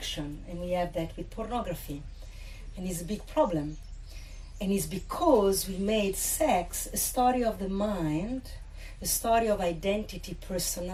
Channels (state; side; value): identical; both; correlation 1.00